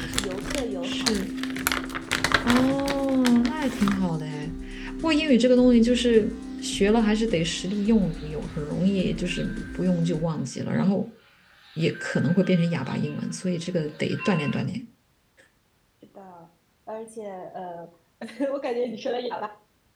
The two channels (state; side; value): identical; both; correlation 1.00